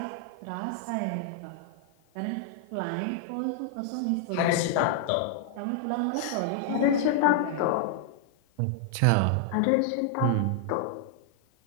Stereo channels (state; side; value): different; both; correlation -0.01